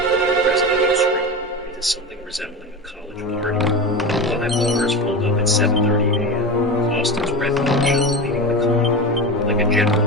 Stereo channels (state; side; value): normal; both; correlation 0.23